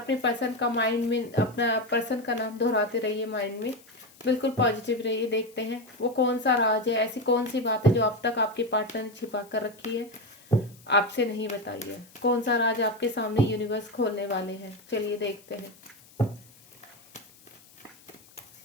पर्सन का माइंड में, अपना पर्सन का नाम दोहराते रहिए माइंड में। बिल्कुल पॉजिटिव रहिए। देखते हैं वो कौन सा राज है, ऐसी कौन सी बात है जो अब तक आपके पार्टनर ने छिपा कर रखी है, आपसे नहीं बताई है। कौन सा राज आपके सामने यूनिवर्स खोलने वाले हैं। चलिए देखते हैं।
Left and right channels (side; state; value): left; noise; hiss, 25 dB below the sound